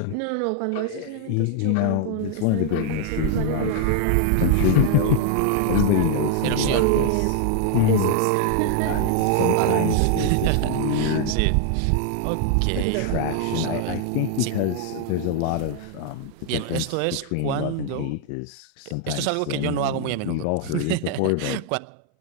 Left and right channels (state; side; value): different; both; correlation 0.00